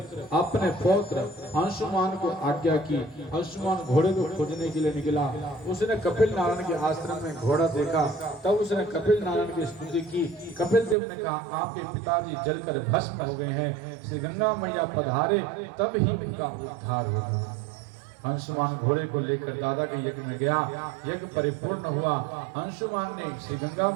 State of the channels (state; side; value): drops out; left; at 11.0 s